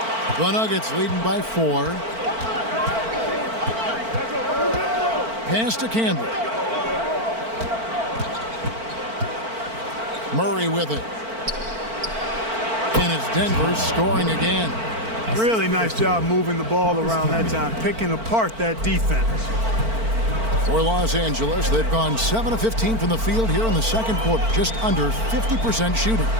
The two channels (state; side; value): late; left; 4.5 ms